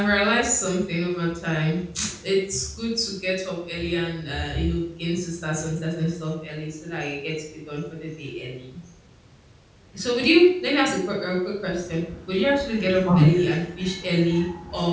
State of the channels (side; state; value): both; identical; correlation 1.00